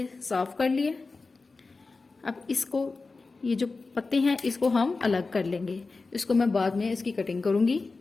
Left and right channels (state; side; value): quieter; right; 3.9 dB